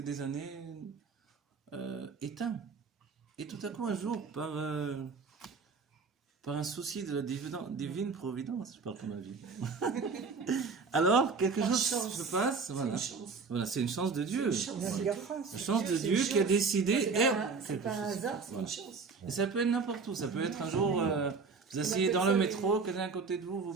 des années éteint. Et tout à coup, un jour, par par un souci de la divine providence, je parle comme ma vie. Alors, quelque Par chose chance. se passe, C'est voilà. une chance. Voilà, c'est une chance de Dieu. C'est une chance. Il y a de la grâce. La chance de C'est Dieu une qui a chance. décidé. C'est pas un hasard, c'est Voilà. une chance. Et ça peut être n'importe où. Ça peut être un jour, vous asseyez appelle dans ça le des- métro, quelqu'un à côté de vous vous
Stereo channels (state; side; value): quieter; left; 4.8 dB